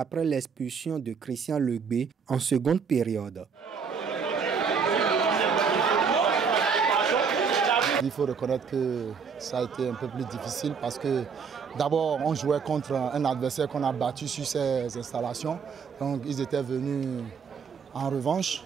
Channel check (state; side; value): quieter; left; 6.0 dB